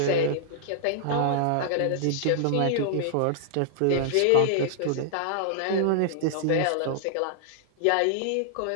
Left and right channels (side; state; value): both; different; correlation -0.01